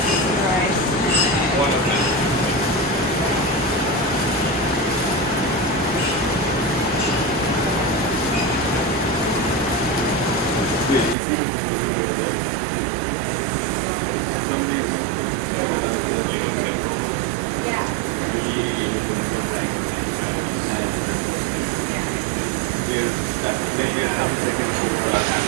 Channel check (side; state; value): left; drops out; at 11.2 s